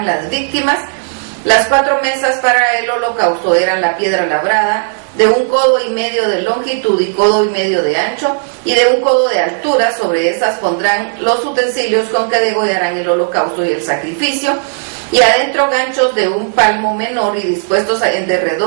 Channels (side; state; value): left; silent; digital silence